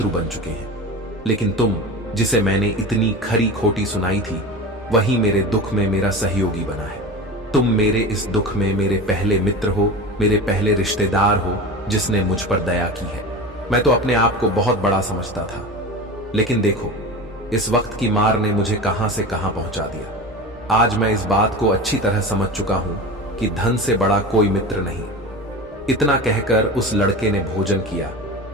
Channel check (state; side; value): normal; both; correlation 0.30